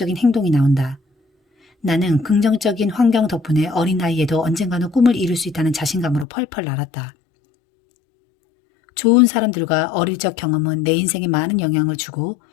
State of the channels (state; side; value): drops out; right; at 6.2 s